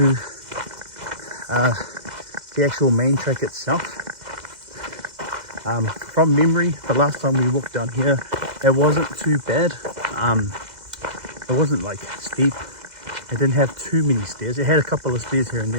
the actual main track itself. From memory, the last time we walked down here, it wasn't too bad. It wasn't like steep. It didn't have too many stairs. It had a couple of stairs here and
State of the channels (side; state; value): left; late; 2.0 ms